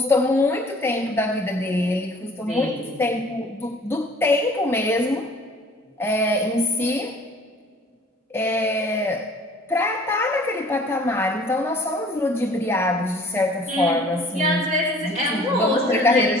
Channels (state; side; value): normal; both; correlation 0.51